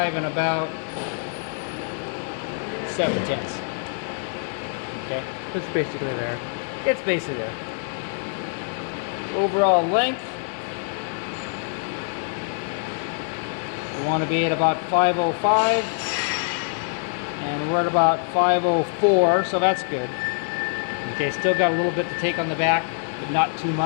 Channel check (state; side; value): silent; right; 62 dB below the other